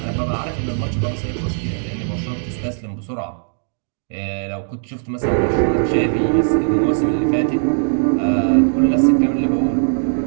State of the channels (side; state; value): left; silent; digital silence